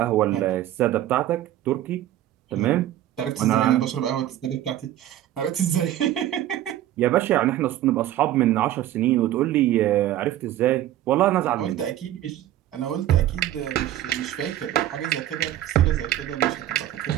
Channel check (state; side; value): quieter; left; 12.9 dB